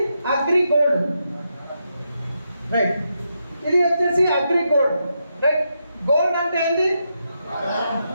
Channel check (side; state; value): both; inverted; correlation -0.83